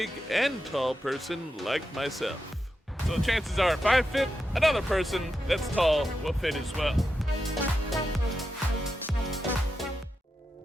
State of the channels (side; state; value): both; normal; correlation 0.88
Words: and tall person like myself. So chances are if I fit, another person that's tall will fit as well.